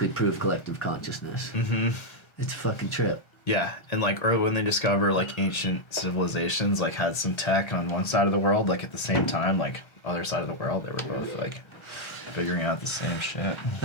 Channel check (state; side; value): late; right; 1.3 ms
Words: proof collective consciousness. Mm-hmm. It's a fucking trip. Yeah, and like early when they discover like ancient civilizations like had some tech on one side of the world, like at the same time, like other side of the world, they were both like figuring out the same shit.